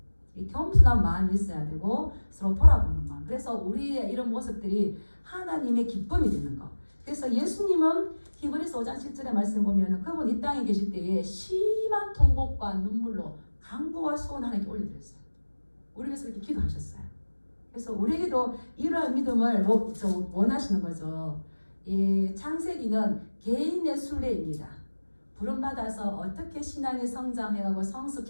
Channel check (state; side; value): inverted; both; correlation -1.00